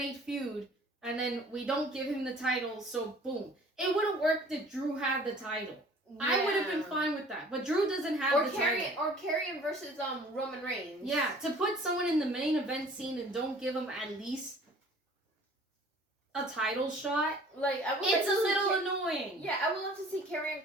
feud, and then we don't give him the title, so boom. It wouldn't work that Drew had the title. Yeah. I would have been fine with that. But Drew doesn't have the title. Or Karrion versus Roman Reigns. Yeah, to put someone in the main event scene and don't give him at least a title shot, like it's a little annoying. Yeah, I would love to see Karrion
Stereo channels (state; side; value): normal; both; correlation 0.50